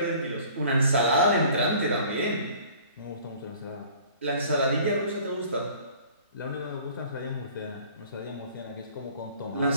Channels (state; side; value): inverted; both; correlation -0.51